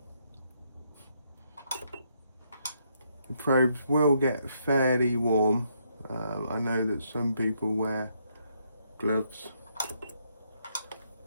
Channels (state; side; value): inverted; both; correlation -0.75